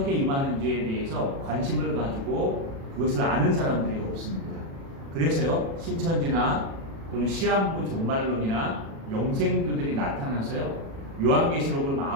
임하는지에 대해서 관심을 가지고 그것을 아는 사람들이 없습니다. 그래서요, 신천지나 또는 시한부 종말론이나 영생교들이 나타나서요, 요한계시록을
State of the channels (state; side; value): late; left; 36 ms